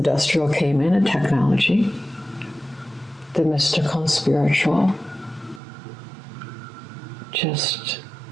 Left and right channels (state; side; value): drops out; left; at 5.6 s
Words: came in and technology, the mystical and spiritual just